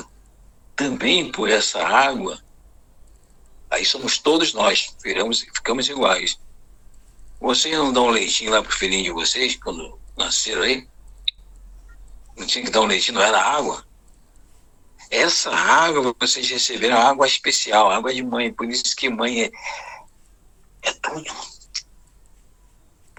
também por essa água, Aí somos todos nós, ficamos iguais. Vocês não dão leitinho lá pro filhinho de vocês, quando nasceram aí? Não tinha que dar um leitinho, não era água? Essa água, vocês receberam água especial, água de mãe. Por isso que mãe é tudo.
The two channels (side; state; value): both; identical; correlation 1.00